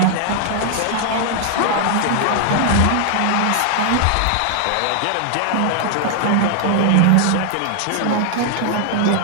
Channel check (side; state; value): both; different; correlation 0.00